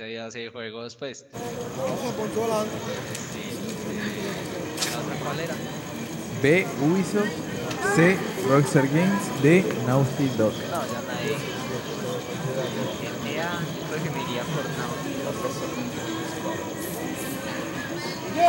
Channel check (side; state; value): both; identical; correlation 1.00